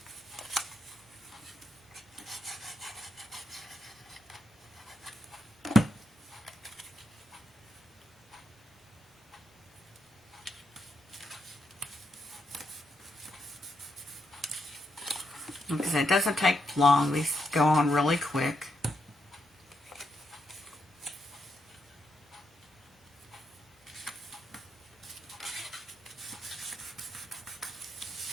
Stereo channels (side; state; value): both; normal; correlation 0.81